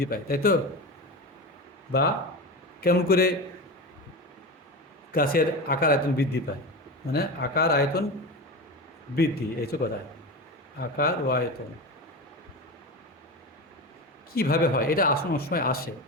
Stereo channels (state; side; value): normal; both; correlation 0.24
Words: পায়, তাই তো? বা কেমন করে গাছের আকার আয়তন বৃদ্ধি পায়, মানে আকার আয়তন বৃদ্ধি, এই তো কথা। আকার ও আয়তন কীভাবে হয়, এটা অনেক সময় আসে,